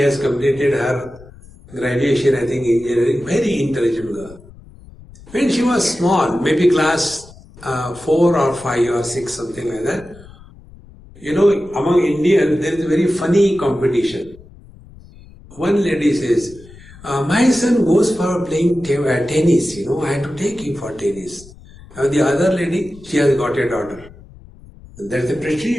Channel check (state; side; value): noise; left; rumble, 21 dB below the sound